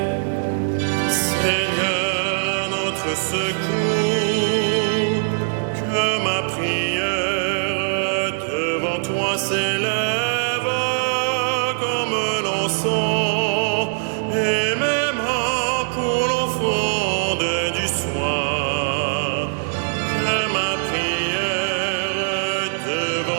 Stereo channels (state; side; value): silent; left; digital silence